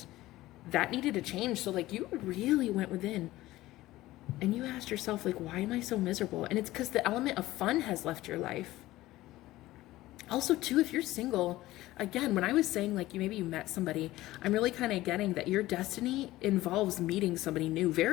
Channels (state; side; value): quieter; right; 16.9 dB